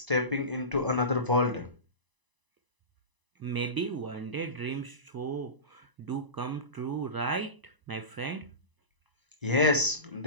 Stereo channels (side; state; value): left; late; 1.0 ms